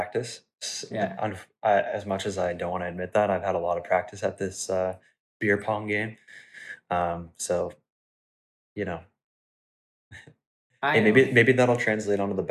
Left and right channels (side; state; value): both; identical; correlation 1.00